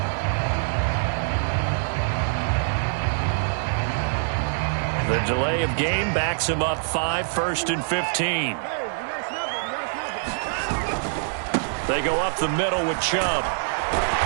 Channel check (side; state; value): left; silent; digital silence